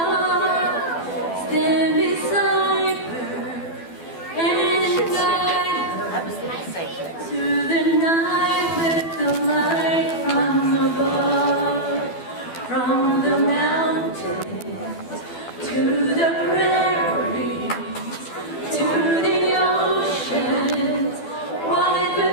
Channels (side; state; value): right; late; 12 ms